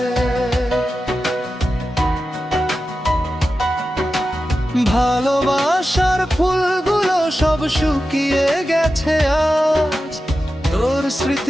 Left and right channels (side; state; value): both; normal; correlation 0.92